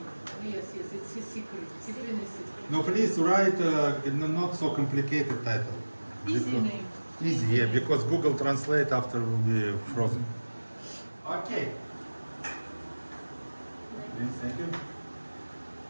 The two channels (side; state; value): both; inverted; correlation -1.00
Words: Yes, it's a secret. Secret is secret. No, please write not so complicated title. Easy Because- name. Easy, yeah, because Google Translate after will be frozen. Okay. Please, thank you.